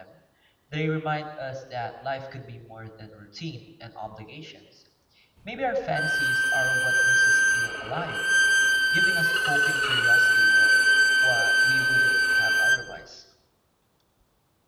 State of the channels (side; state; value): both; identical; correlation 1.00